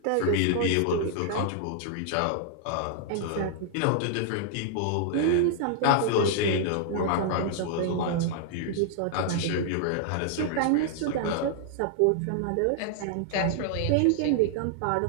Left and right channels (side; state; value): both; different; correlation -0.01